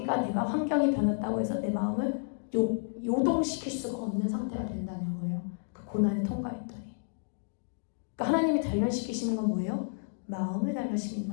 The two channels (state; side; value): silent; right; digital silence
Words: 내가 환경이 변했다고 해서 내 마음을 요동시킬 수가 없는 상태가 된다는 거예요. 그 고난을 통과했더니. 그러니까 하나님이 단련시키시는 건 뭐예요? 마음을